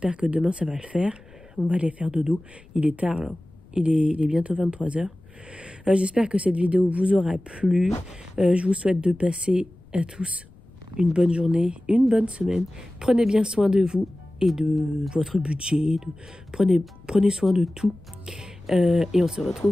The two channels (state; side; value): noise; left; rumble, 25 dB below the sound